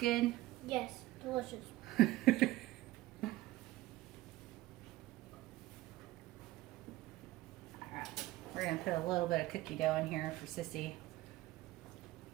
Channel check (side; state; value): left; quieter; 17.1 dB